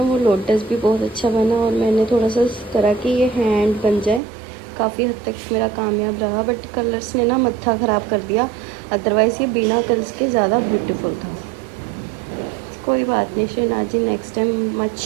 वो लोटस भी बहुत अच्छा बना, और मैंने थोड़ा सा इस तरह की ये हैंड बन जाए, काफ़ी हद तक मेरा कामयाब रहा। बट कलर्स ने ना मत्था ख़राब कर दिया, अदरवाइज़ ये बिना कलर्स के ज़्यादा ब्यूटीफुल था। कोई बात नहीं Shahnazji, next time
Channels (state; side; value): drops out; left; at 4.2 s